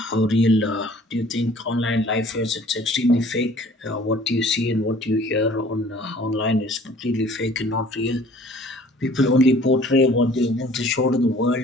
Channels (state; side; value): normal; both; correlation 0.53